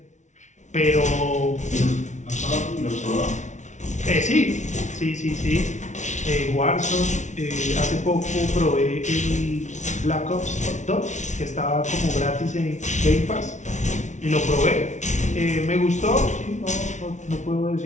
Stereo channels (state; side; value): late; right; 0.35 ms